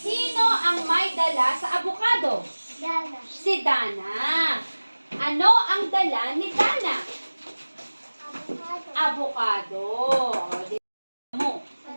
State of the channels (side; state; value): both; inverted; correlation -1.00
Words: ang may dala sa avocado? Si Dana. Ano ang dala ni Dana? Avocado. O, di mo.